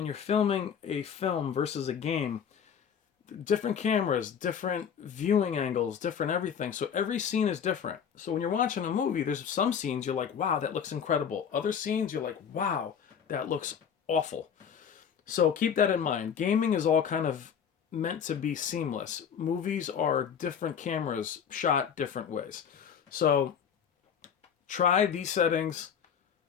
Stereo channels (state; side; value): quieter; right; 7.7 dB